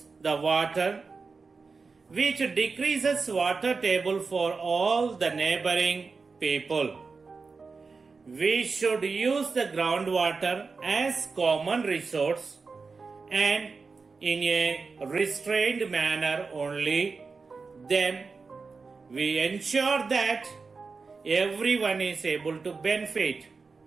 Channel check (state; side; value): quieter; left; 4.5 dB